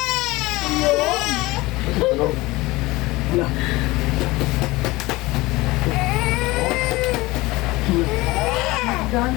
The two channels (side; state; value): right; quieter; 20.7 dB